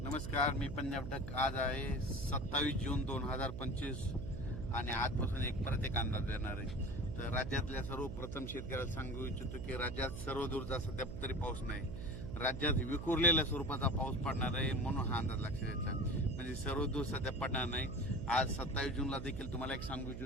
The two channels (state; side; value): noise; right; hum, 7 dB below the sound